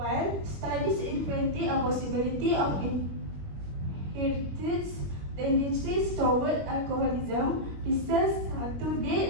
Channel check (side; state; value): left; late; 21 ms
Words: studies indicate a possibility of inherited tendencies toward alcoholism, research to